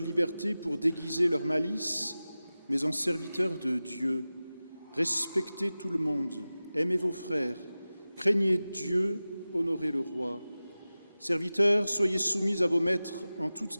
liberté pour déguiser leur malice, mais en serviteurs de Dieu. Respectez tout le monde, aimez vos frères, craignez Dieu, honorez le roi. Serviteurs, soyez soumis à vos maîtres en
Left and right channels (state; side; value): inverted; both; correlation -0.96